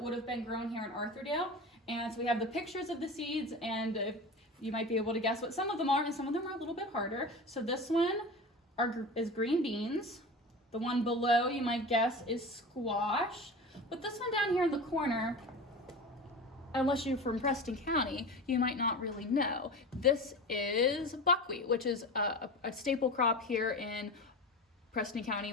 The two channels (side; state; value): both; normal; correlation 0.30